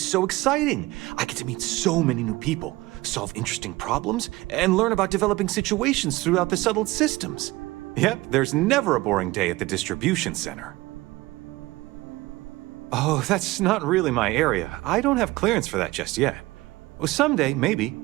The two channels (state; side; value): quieter; left; 20.0 dB